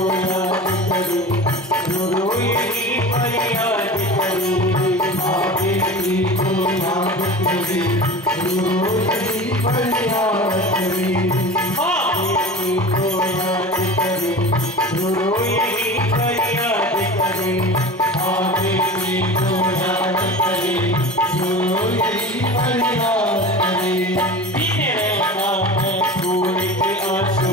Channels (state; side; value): normal; both; correlation 0.34